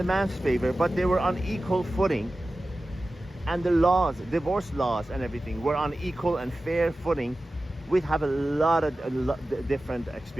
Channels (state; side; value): normal; both; correlation 0.95